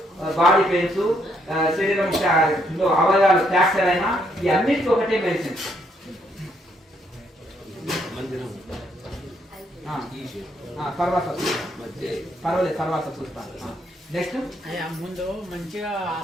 బాడీ పెయిన్స్, శరీరం అవయవాలు ఫ్రాక్చర్ అయినా ఈ అన్నిటికీ ఒకటే మెడిసిన్. తర్వాత చూస్తాను. నెక్స్ట్ ముందు మంచిగా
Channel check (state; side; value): normal; both; correlation 0.73